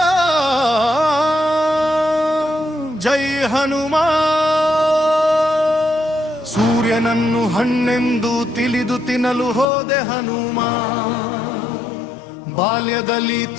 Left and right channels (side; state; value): right; drops out; at 9.7 s